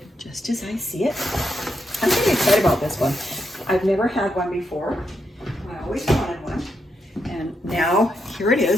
just as I see it. I'm pretty excited about this one. I've never had one before. I always wanted one. And now here it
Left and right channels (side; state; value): both; normal; correlation 0.82